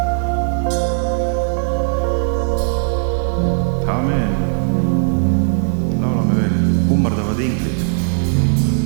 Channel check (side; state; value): left; silent; digital silence